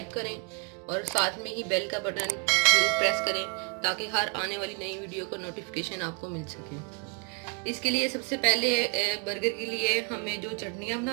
करें और साथ में ही बेल का बटन जरूर प्रेस करें ताकि हर आने वाली नई वीडियो का नोटिफिकेशन आपको मिल सके। इसके लिए सबसे पहले बर्गर के लिए हमें जो चटनियाँ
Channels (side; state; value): left; quieter; 35.0 dB